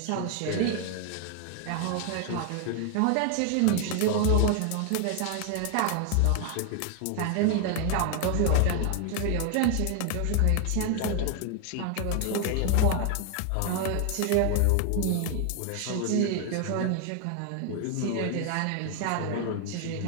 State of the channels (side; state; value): both; different; correlation 0.00